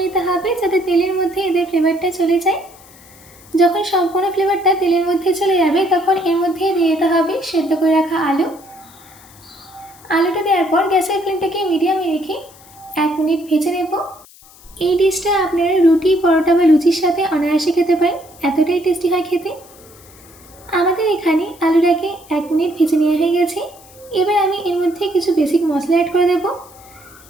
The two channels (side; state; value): left; noise; hiss, 24 dB below the sound